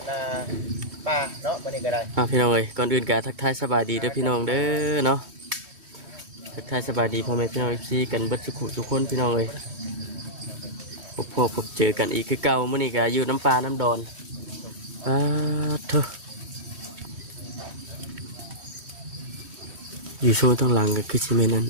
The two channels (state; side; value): late; left; 3.1 ms